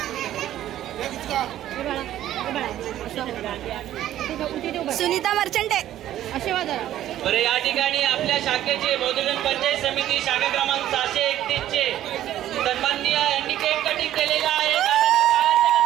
सुनीता मर्चंट आहे. बरं, या ठिकाणी आपल्या शाखेचे मधुजन पंचायत समिती शाखा क्रमांक 631 चे सन्माननीय यांनी केक कटिंग केलेला आहे.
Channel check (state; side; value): quieter; left; 12.6 dB